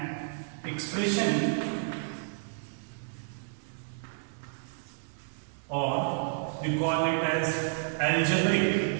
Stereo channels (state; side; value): silent; left; digital silence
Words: expression or we call it as